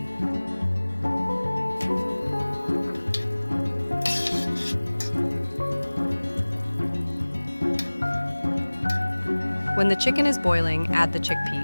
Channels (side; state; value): both; inverted; correlation -1.00